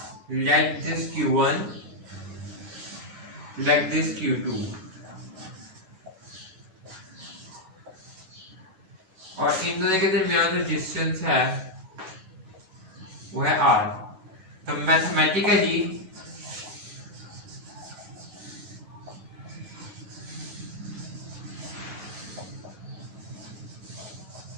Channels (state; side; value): late; left; 11 ms